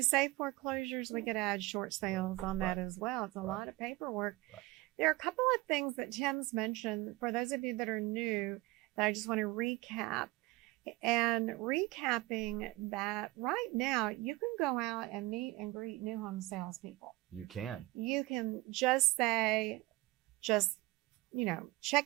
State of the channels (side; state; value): left; quieter; 20.5 dB